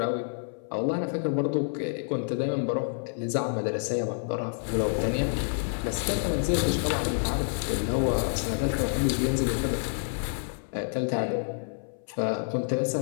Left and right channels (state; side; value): silent; right; 57 dB below the other